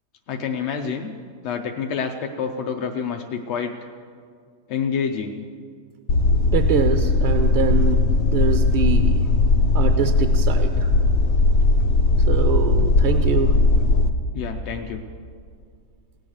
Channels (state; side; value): late; right; 3.2 ms